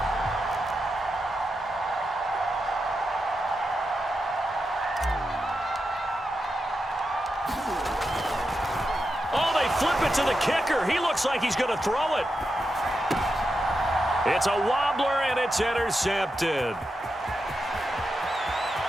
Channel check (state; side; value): normal; both; correlation 0.88